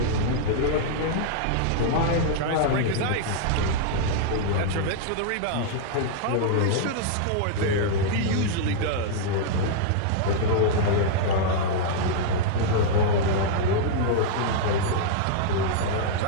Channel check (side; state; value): both; different; correlation -0.01